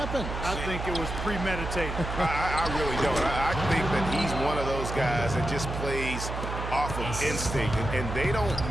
I think it was premeditated. I really don't. I think that he's one of those guys that just plays off of instinct, and they don't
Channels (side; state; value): right; noise; hum, 5 dB below the sound